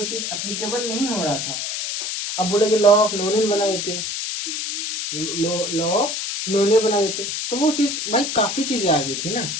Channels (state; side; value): noise; left; hiss, 3 dB below the sound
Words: चीज एप्लीकेबल नहीं हो रहा था। अब बोले लॉ ऑफ नोनेन बना देते, लॉ ऑफ नोने बना देते, तो वो चीज भाई काफी चीजें आ गई थी ना।